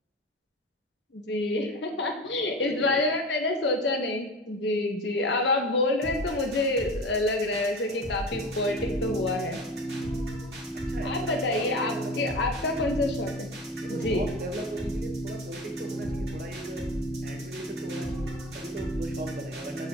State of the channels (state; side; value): normal; both; correlation 0.32